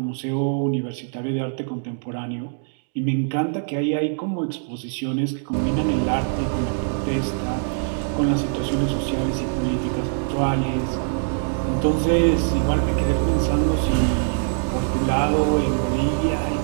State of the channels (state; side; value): silent; left; digital silence